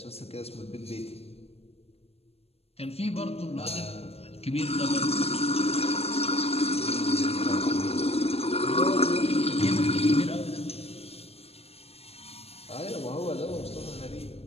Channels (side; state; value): right; late; 0.29 ms